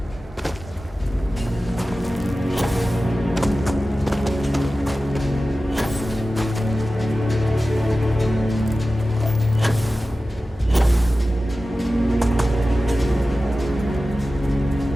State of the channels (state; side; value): normal; both; correlation 0.95